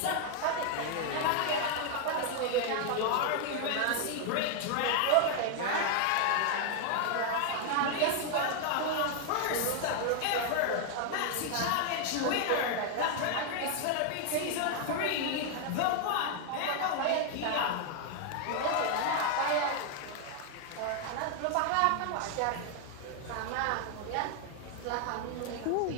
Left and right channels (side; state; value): both; different; correlation 0.00